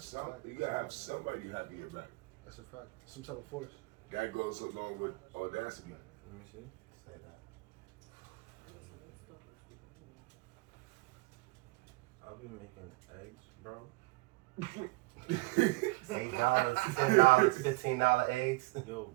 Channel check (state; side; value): quieter; left; 24.2 dB